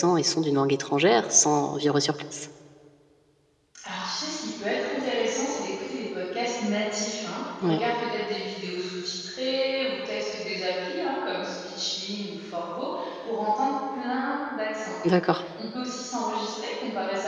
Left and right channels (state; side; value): identical; both; correlation 1.00